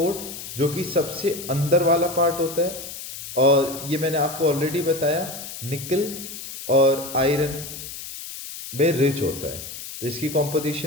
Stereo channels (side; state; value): left; noise; hiss, 10 dB below the sound